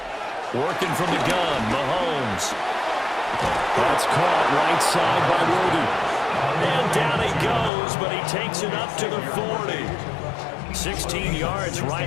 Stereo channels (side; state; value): right; drops out; at 7.7 s